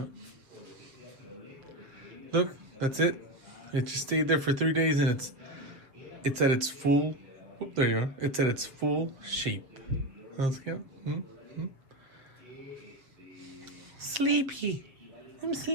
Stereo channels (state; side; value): late; left; 7.4 ms